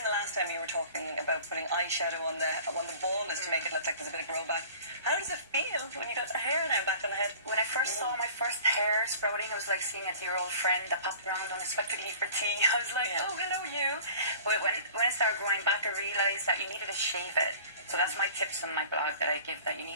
the last time, you were talking about putting eyeshadow on the baldness to make it look like there's a bit of grow back. How does it feel when you got the hair now back on the head? When I first saw my first hair sprouting, it was like seeing a dear-old friend that popped around unexpectedly for tea. I was like, oh, hello, you. But when it started growing back, I realised that you needed to shave it. So that's my tips on my blog that I give, that you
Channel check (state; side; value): inverted; both; correlation -0.45